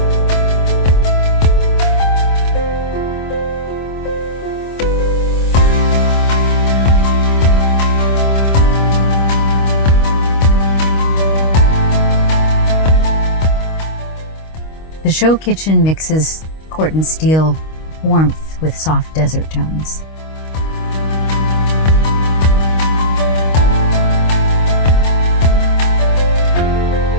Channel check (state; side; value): late; right; 25 ms